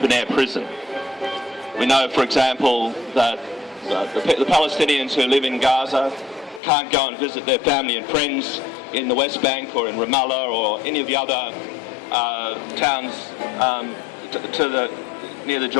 prison. We know, for example, that the Palestinians who live in Gaza can't go and visit their family and friends in the West Bank or in Ramallah or any of the other towns near the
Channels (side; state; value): right; drops out; at 6.6 s